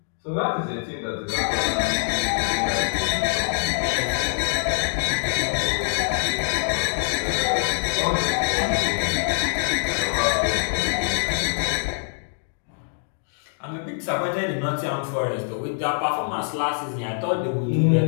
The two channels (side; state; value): right; silent; digital silence